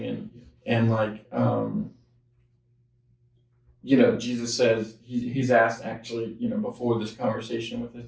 and like Jesus says he's asked actually, before this conversation with his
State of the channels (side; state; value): both; identical; correlation 1.00